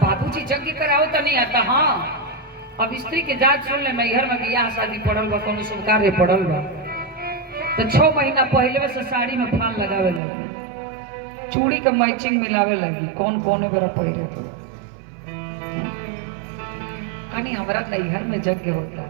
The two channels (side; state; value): left; drops out; at 10.2 s